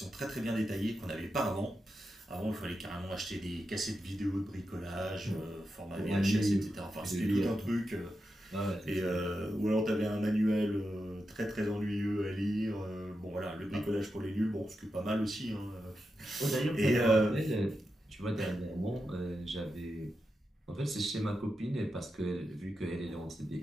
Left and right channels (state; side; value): normal; both; correlation 0.88